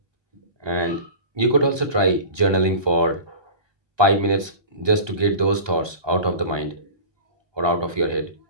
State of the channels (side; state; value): left; late; 1.2 ms